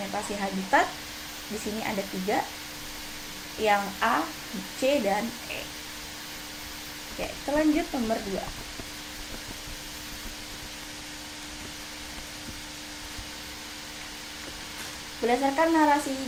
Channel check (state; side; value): identical; both; correlation 1.00